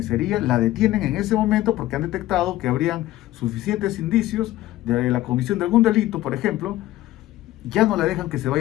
la detienen en ese momento porque han detectado que habrían suficientes indicios de la comisión de algún delito, por ejemplo, ya no la dejan que se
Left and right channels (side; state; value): right; quieter; 15.4 dB